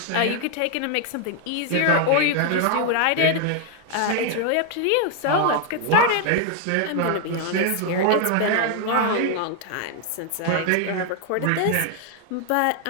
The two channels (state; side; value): different; both; correlation 0.00